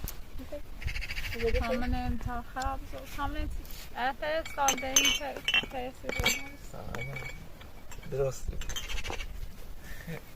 همون امتا خراب زود همون افر سال ده این تأثیر درسته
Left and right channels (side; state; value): both; identical; correlation 1.00